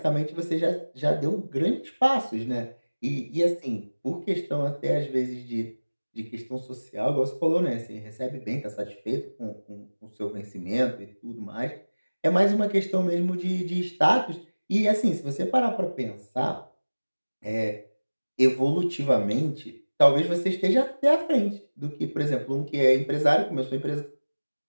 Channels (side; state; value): both; inverted; correlation -1.00